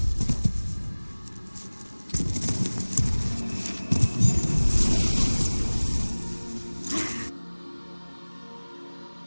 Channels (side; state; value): both; inverted; correlation -1.00